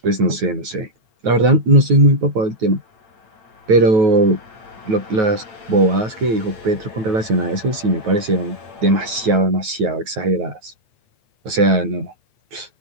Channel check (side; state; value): left; late; 9.3 ms